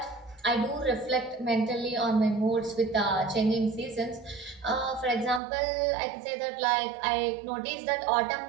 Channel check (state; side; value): drops out; left; at 5.4 s